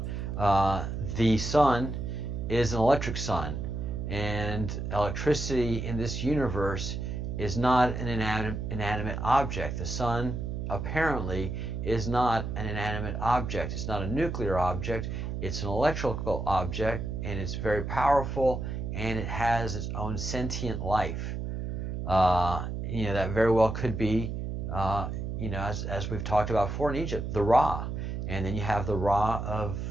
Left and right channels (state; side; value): noise; right; hum, 4 dB below the sound